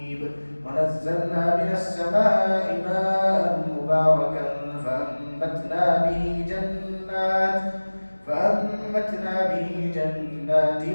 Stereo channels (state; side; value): inverted; both; correlation -1.00